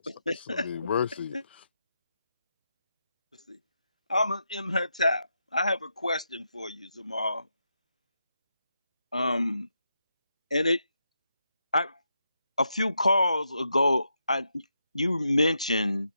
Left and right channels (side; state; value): both; inverted; correlation -0.84